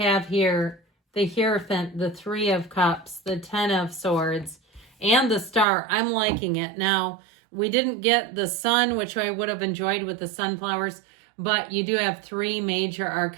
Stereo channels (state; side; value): drops out; left; at 5.7 s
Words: here the Hierophant, the Three of Cups, the Ten of Swords, and the Star. I'm liking it. Now, we didn't get the sun, which I would have enjoyed with the sunflowers, but you do have three major